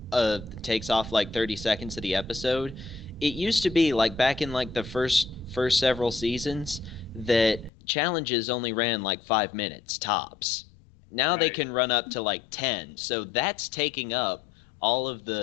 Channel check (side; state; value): right; drops out; at 7.7 s